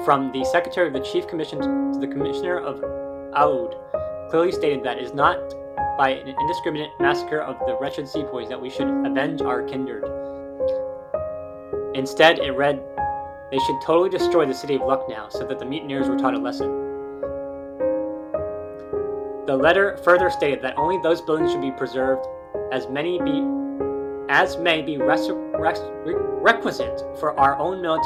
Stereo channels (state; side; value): identical; both; correlation 1.00